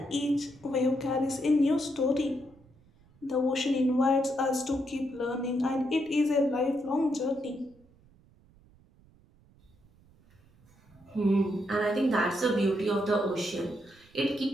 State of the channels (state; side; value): noise; right; rumble, 29 dB below the sound